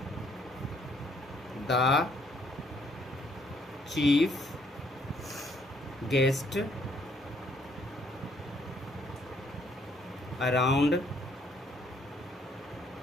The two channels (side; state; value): both; normal; correlation 0.67